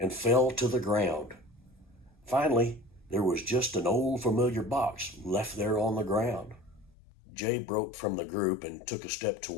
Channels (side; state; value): right; drops out; at 6.9 s